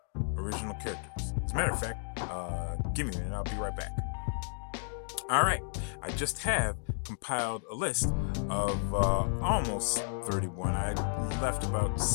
original characters. As a matter of fact, give me a minute, I'll be right back. Alright, I just have compiled a list of almost 31. I left about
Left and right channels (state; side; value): silent; right; digital silence